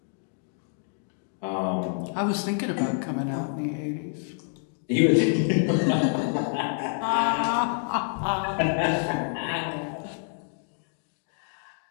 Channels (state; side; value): silent; right; 60 dB below the other